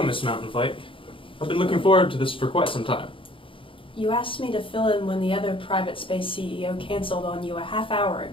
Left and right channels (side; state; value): right; late; 0.25 ms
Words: Miss Mountain Flake. I've been looking forward to this for quite some time. You asked me to fill in when the other private space CEO canceled on you a half hour